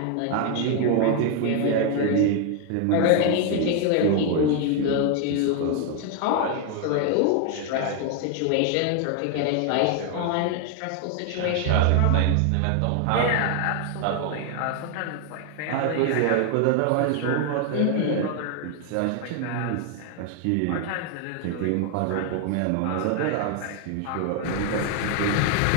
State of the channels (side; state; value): both; different; correlation 0.00